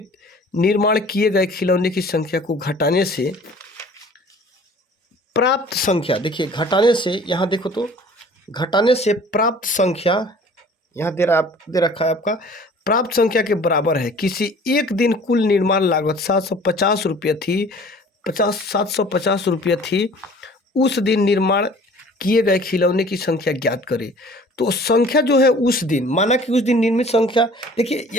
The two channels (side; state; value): both; normal; correlation 0.49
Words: निर्माण किए गए खिलौने की संख्या को घटाने से प्राप्त संख्या, देखिए घटाने से, यहाँ देखो तो घटाने से प्राप्त संख्या यहाँ दे रखा है आपका, प्राप्त संख्या के बराबर है। किसी एक दिन कुल निर्माण लागत 750 रुपये थी, 750 रुपये थी, उस दिन निर्माण किए गए खिलौने की संख्या ज्ञात करें। तो संख्या जो है उस दिन, माना कि उस दिन निर्मित संख्या, देखिए